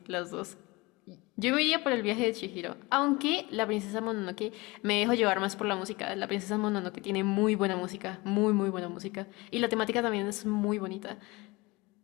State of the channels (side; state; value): right; quieter; 23.3 dB